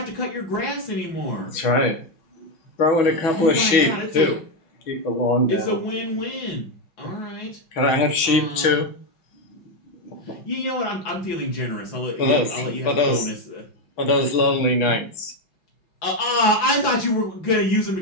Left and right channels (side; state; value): right; late; 6.1 ms